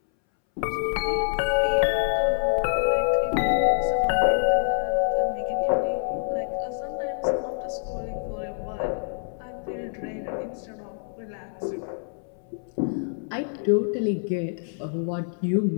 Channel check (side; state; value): right; silent; 61 dB below the other